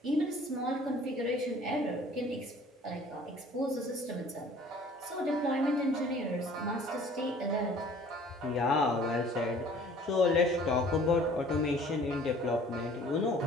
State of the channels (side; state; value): both; normal; correlation 0.52